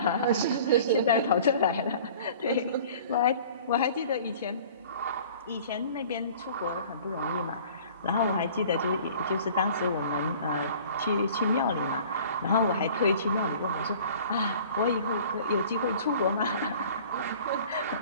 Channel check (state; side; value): inverted; both; correlation -0.47